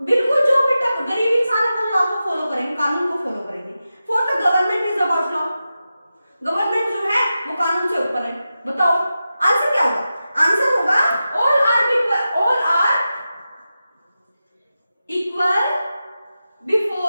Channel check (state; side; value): inverted; both; correlation -0.92